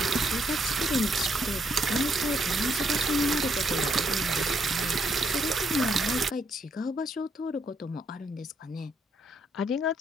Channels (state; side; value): normal; both; correlation 0.74